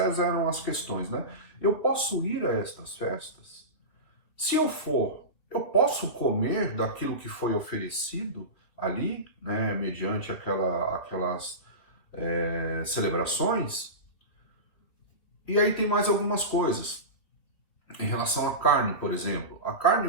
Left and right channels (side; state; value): right; late; 3.2 ms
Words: eram as questões, né? Eu posso ir a estas festas? Se eu for, eu posso comer daquilo que foi oferecido ali, né, mediante aquelas celebrações? E aí tem mais algumas coisas. Em relação à carne, por exemplo, a carne